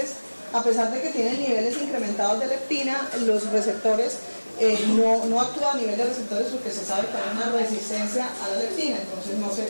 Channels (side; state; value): both; inverted; correlation -1.00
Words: a pesar de que tienen niveles incrementados de leptina, los receptores no actúa a nivel de receptores porque se sabe que hay una resistencia a la leptina, entonces no se